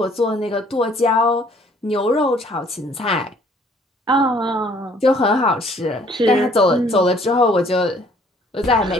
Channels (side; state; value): both; normal; correlation 0.59